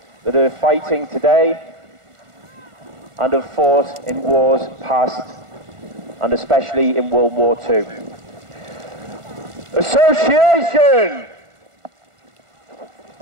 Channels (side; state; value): left; late; 1.4 ms